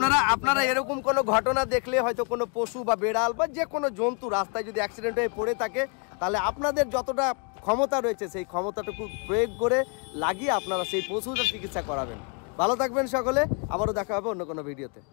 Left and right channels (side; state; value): right; quieter; 37.2 dB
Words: আপনারা এরকম কোনো ঘটনা দেখলে, হয়তো কোনো পশু বা বেড়াল বা যে কোনো জন্তু রাস্তায় যদি অ্যাক্সিডেন্ট হয়ে পড়ে থাকে, তাহলে আপনাদের যতটা ক্ষমতা রয়েছে সেই ক্ষমতাটুকু প্রয়োগ করে লাগিয়ে আপনারা সেই পশুটার চিকিৎসা করাবেন। ভালো থাকবেন সকলে, আবারও দেখা হবে অন্য কোনো ভিডিওতে।